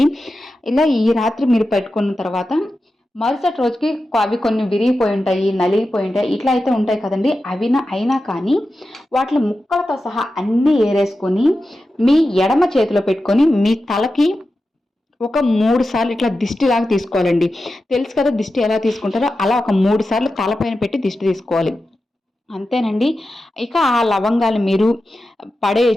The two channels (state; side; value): normal; both; correlation 0.92